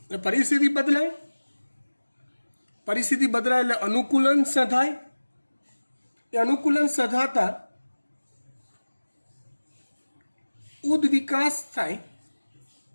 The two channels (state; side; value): inverted; both; correlation -1.00